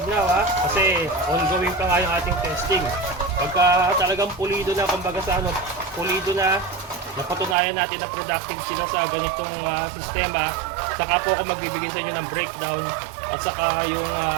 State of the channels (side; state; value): left; drops out; at 7.6 s